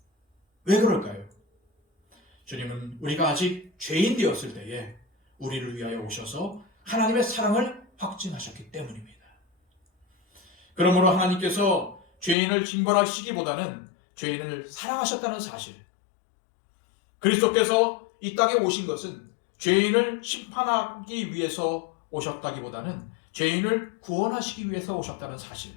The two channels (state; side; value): drops out; right; at 12.4 s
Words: 왜 그럴까요? 주님은 우리가 아직 죄인 되었을 때에 우리를 위하여 오셔서 하나님의 사랑을 확증하셨기 때문입니다. 그러므로 하나님께서 죄인을 징벌하시기보다는 죄인을 사랑하셨다는 사실, 그리스도께서 이 땅에 오신 것은 죄인을 심판하기 위해서 오셨다기보다는 죄인을 구원하시기 위해서 오셨다는